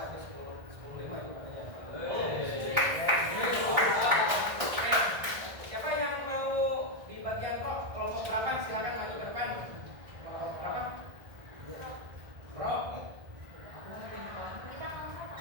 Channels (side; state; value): left; late; 1.6 ms